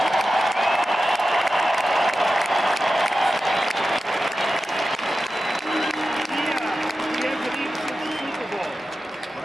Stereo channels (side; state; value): both; normal; correlation 0.93